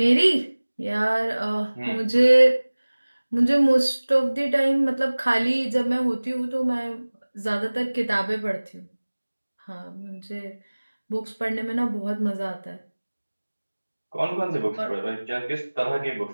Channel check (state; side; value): inverted; both; correlation -1.00